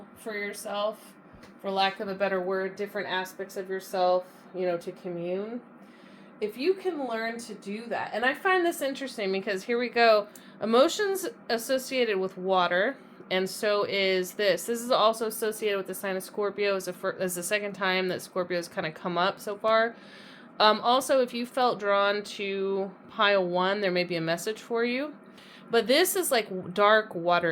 for yourself, for lack of a better word, different aspects of yourself, you know, to commune. If you can learn to do that, and I find this interesting because here we go, emotions associated with water, and so is this. This is also associated with the sign of Scorpio, as the second time that Scorpio has kind of come up so far. Also, if you felt drawn to pile 1, there may be a message for you. But this is like dark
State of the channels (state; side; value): identical; both; correlation 1.00